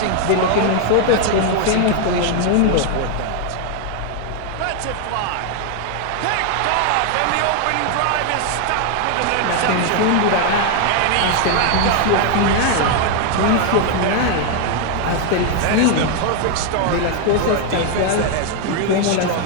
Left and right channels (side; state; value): both; different; correlation 0.01